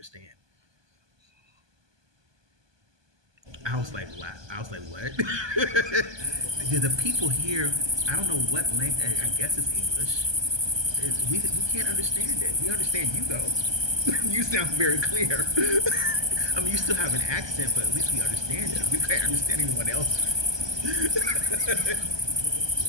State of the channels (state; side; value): late; left; 1.2 ms